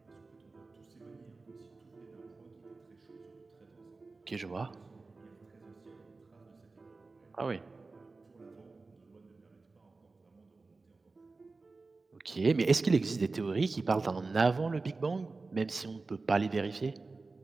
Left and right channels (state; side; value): quieter; left; 3.8 dB